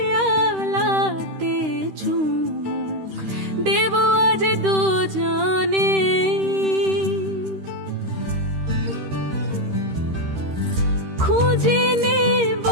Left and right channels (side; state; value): left; late; 13 ms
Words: চুমুক দেব আজ দুজনে, খুঁজে নেব